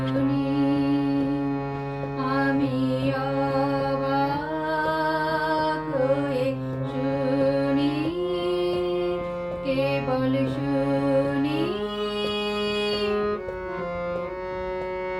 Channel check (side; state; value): both; identical; correlation 1.00